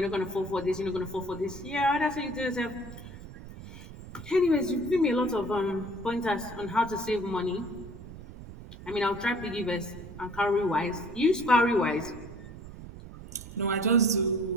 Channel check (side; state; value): right; noise; rumble, 14 dB below the sound